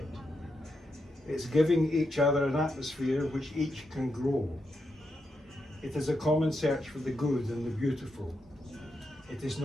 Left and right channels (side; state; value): both; normal; correlation 0.84